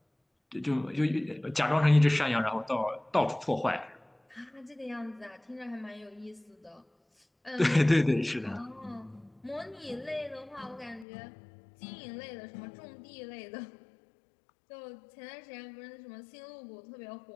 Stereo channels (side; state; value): right; drops out; at 11.1 s